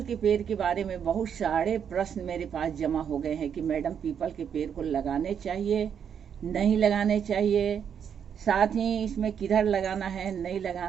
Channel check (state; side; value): quieter; left; 7.9 dB